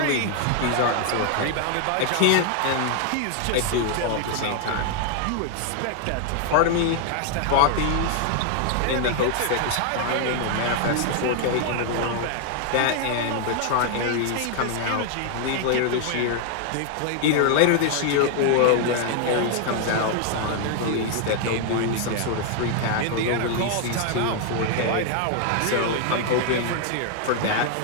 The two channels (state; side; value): different; both; correlation 0.00